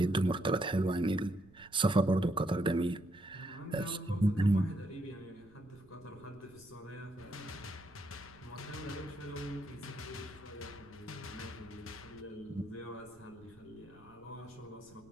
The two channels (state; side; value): noise; right; rumble, 26 dB below the sound